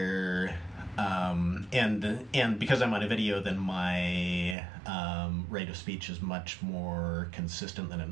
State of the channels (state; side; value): drops out; left; at 4.5 s